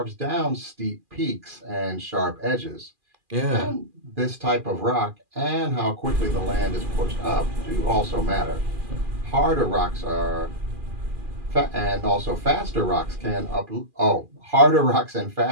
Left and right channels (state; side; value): late; left; 2.4 ms